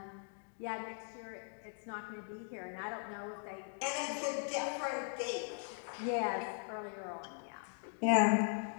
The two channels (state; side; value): silent; right; 51 dB below the other